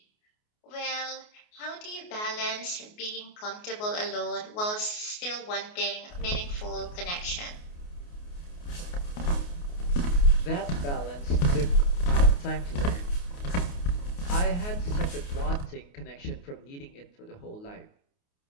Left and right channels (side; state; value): right; late; 28 ms